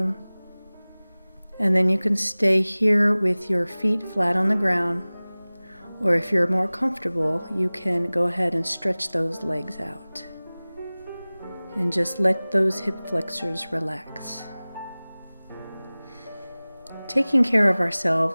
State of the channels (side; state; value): both; inverted; correlation -0.99